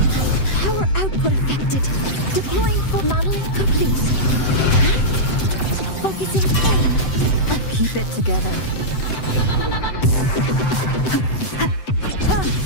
Power output affected. Deploying full modeling complete. Focusing in. Keep it together.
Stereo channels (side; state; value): right; late; 7.8 ms